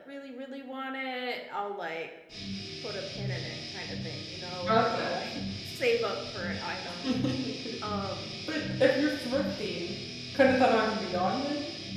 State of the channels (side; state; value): both; identical; correlation 1.00